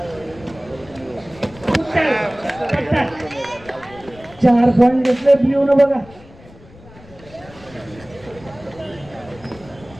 4 पॉइंट घेतले ब्ल्यू न बघा.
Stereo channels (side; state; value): left; noise; rumble, 22 dB below the sound